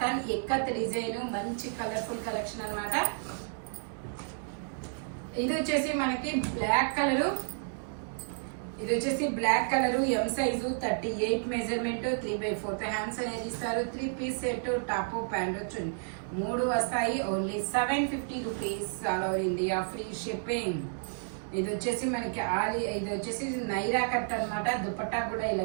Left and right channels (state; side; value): silent; left; digital silence